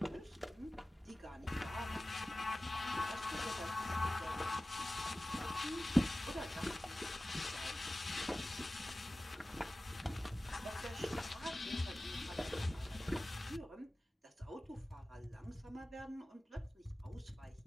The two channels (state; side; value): normal; both; correlation 0.96